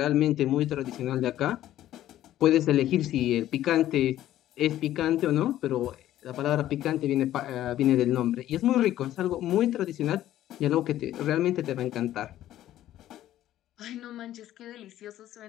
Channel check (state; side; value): quieter; right; 13.1 dB